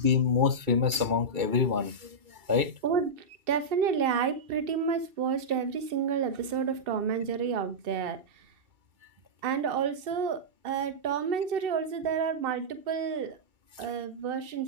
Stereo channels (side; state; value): left; late; 2.3 ms